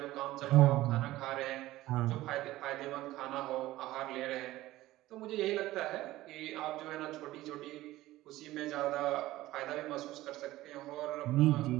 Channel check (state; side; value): quieter; left; 16.6 dB